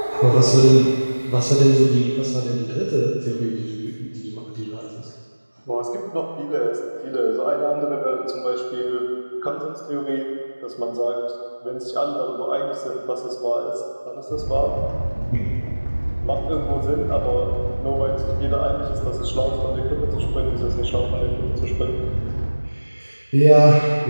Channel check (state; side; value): inverted; both; correlation -1.00